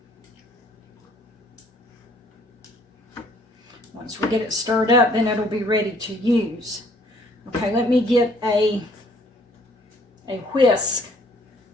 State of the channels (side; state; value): both; normal; correlation 0.60